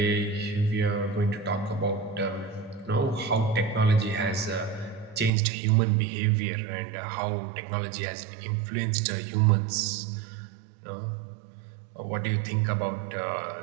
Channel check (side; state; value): left; drops out; at 5.3 s